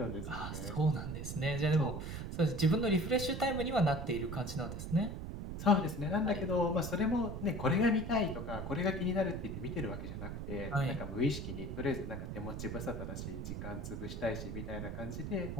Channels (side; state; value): right; noise; rumble, 6 dB below the sound